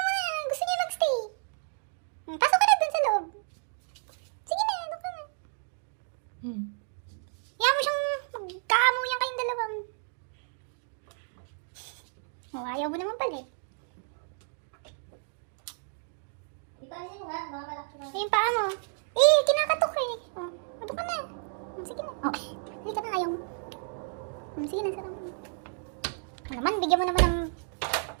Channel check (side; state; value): left; silent; digital silence